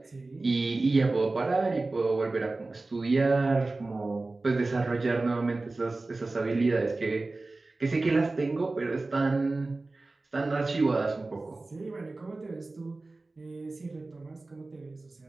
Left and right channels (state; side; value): quieter; left; 3.3 dB